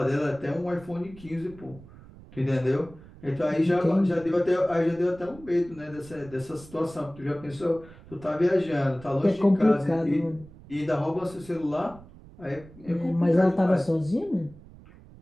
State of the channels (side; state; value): right; noise; rumble, 21 dB below the sound